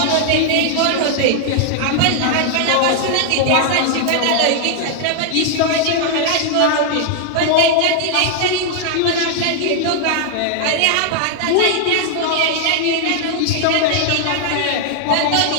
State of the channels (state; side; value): different; both; correlation 0.00